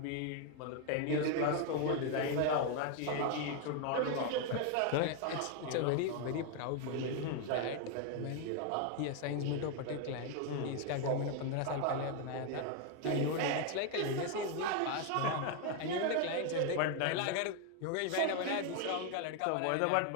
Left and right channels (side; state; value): both; different; correlation 0.01